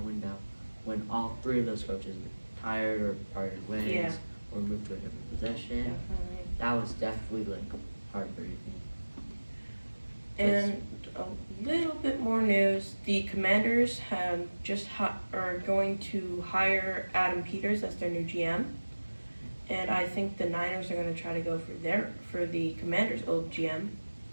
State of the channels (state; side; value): inverted; both; correlation -1.00